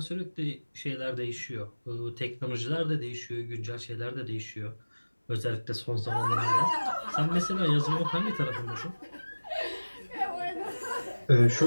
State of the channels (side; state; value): both; inverted; correlation -1.00